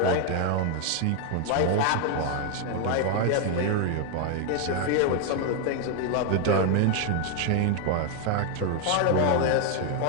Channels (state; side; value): different; both; correlation 0.01